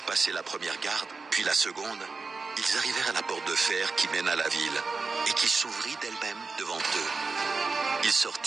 passé la première garde, puis la seconde, ils arrivèrent à la porte de fer qui mène à la ville, et qui s'ouvrit d'elle-même devant eux. Ils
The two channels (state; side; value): quieter; left; 4.3 dB